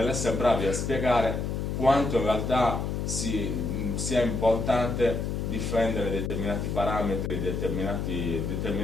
bravi a spiegare quanto in realtà sia importante difendere determinati parametri,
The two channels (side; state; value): left; noise; hum, 2 dB below the sound